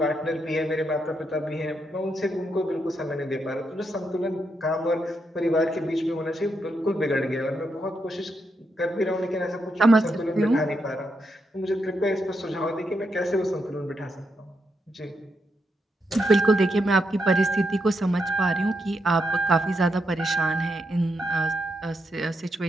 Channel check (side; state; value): both; normal; correlation 0.81